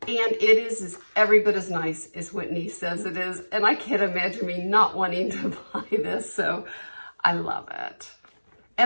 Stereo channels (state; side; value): inverted; both; correlation -1.00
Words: it is every bit as nice as Whitney says it is, and I can't imagine me not wanting to buy this, so I love it.